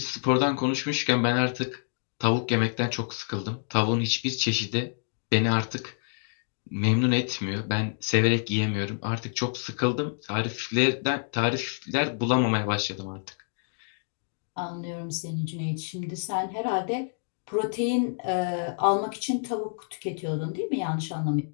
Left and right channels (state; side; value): silent; right; digital silence